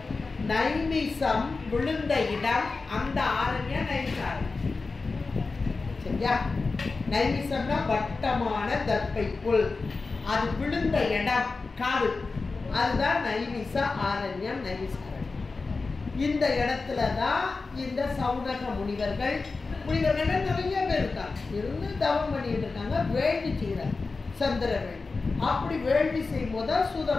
நைமிசம் விழுந்த இடம் அந்த ஆரண்யம் நைமிசாரண்யம். சரியா? நைமிசம்னா வட்டமான தர்ப்பை புல், அது விழுந்த இடம் காடு, அதுதான் நைமிச ஆரண்யம், நைமிசாரண்யம். இந்த இடத்துல தான் இந்த சௌனக முனிவர்கள் நிறைய பேர் இருக்காங்க, இருந்து தவம் பண்ணிட்டு இருக்காங்க, வேள்வி செய்கிறாங்க, சந்திர வேள்வி. அப்படி வேள்வி செய்யும் போது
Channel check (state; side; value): quieter; right; 4.0 dB